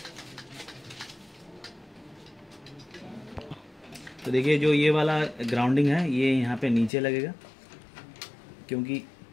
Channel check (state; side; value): drops out; right; at 6.9 s